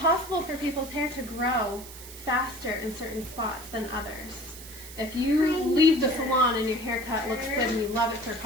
for people's hair to grow faster in certain spots than others. If you leave the salon and your haircut looks good and you love it for a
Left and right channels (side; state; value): right; noise; hiss, 15 dB below the sound